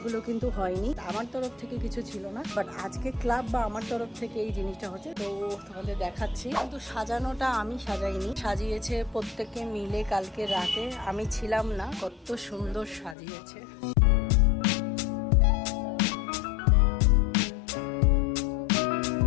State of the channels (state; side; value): drops out; right; at 13.2 s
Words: কিন্তু হয়নি। আমার তরফ থেকে কিছু ছিল না, বাট আজকে ক্লাব বা আমার তরফ থেকে এই জিনিসটা হচ্ছে। তো তোমাদের দেখাচ্ছি। কিন্তু সাজানোটা আমি সাজাইনি, সাজিয়েছে প্রত্যেকে মিলে কালকে রাতে। আমি ছিলাম না, কত সুন্দর সাজিয়েছে।